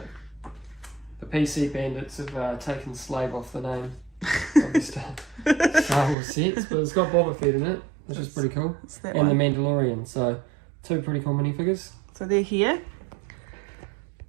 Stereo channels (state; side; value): drops out; left; at 6.2 s